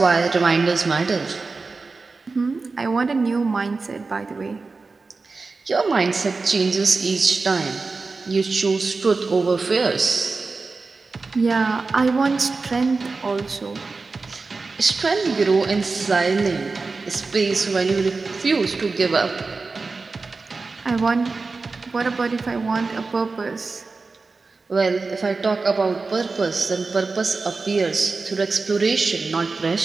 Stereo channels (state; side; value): quieter; left; 4.0 dB